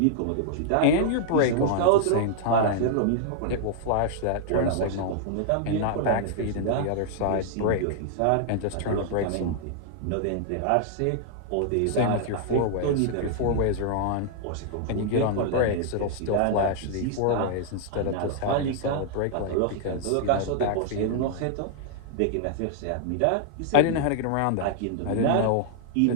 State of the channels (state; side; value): different; both; correlation -0.01